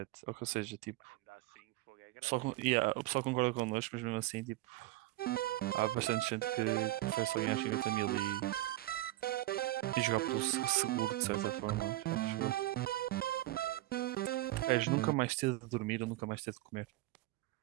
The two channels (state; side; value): quieter; left; 17.1 dB